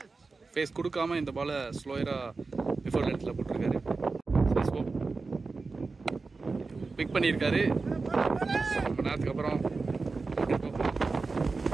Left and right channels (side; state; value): left; quieter; 4.0 dB